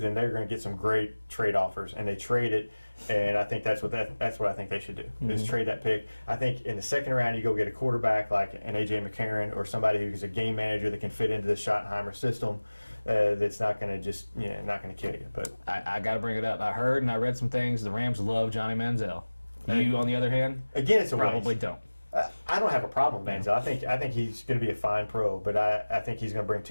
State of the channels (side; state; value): both; inverted; correlation -1.00